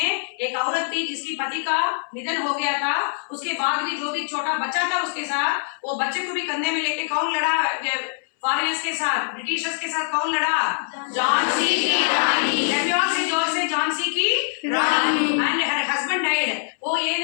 एक औरत थी जिसकी पति का निधन हो गया था, उसके बाद भी जो भी छोटा बच्चा था उसके साथ, वो बच्चे को भी कंधे में लेके कौन लड़ा फॉरेनर्स के साथ, ब्रिटिशर्स के साथ कौन लड़ा? झांसी की रानी. झांसी की Rani. And her husband died. वो ये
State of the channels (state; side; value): silent; right; 63 dB below the other